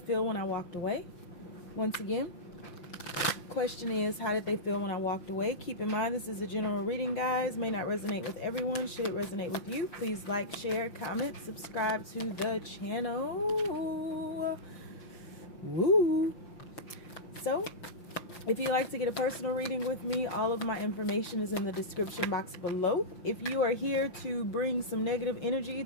when I walked away? Once again, question is, how did they feel when I walked away? Keep in mind, this is a general reading, guys. May not resonate with everyone. Should it resonate with you, please like, share, comment, subscribe to the channel. Woo! So, if you'd like to get a personal reading with me, all of my information is in the description box below. If you are here to bring some negative energy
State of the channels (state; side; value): late; right; 5.8 ms